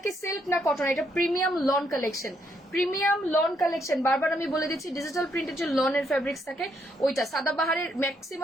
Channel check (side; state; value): both; normal; correlation 0.74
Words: কি সিল্ক না কটন? এটা premium lawn collection, premium lawn collection. বারবার আমি বলে দিচ্ছি ডিজিটাল প্রিন্টের যে লনের ফেব্রিক্স থাকে ওইটা, সাদাবাহারের